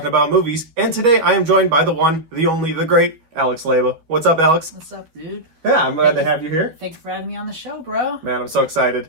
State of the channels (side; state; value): left; late; 13 ms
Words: about movies, and today I am joined by the one, the only, the great Alex Leyba. What's up, Alex? What's up, dude? Yeah, I'm glad to have you here. Thanks for having me on the show, bro. Man, I'm so excited.